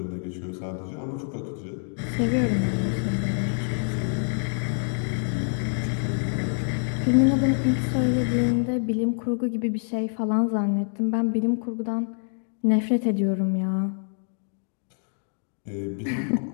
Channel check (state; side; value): silent; right; digital silence